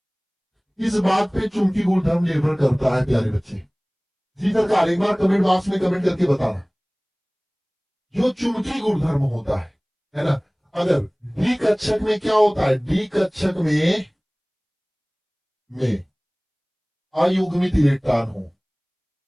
किस बात पे चुंबकीय गुणधर्म निर्भर करता है प्यारे बच्चे? जी सरकार, एक बार कमेंट बॉक्स में कमेंट करके बताना। जो चुंबकीय गुणधर्म होता है ना, अगर डी कक्षक में क्या होता है? डी कक्षक में अयुग्मित इलेक्ट्रॉन हो,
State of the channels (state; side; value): identical; both; correlation 1.00